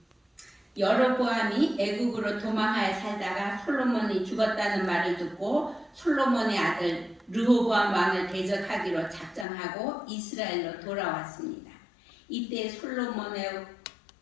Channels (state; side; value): drops out; right; at 9.5 s